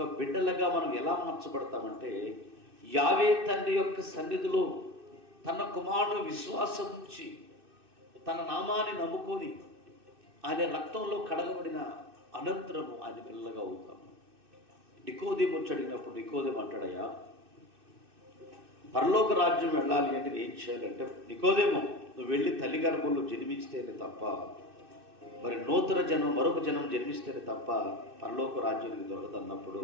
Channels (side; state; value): left; late; 2.6 ms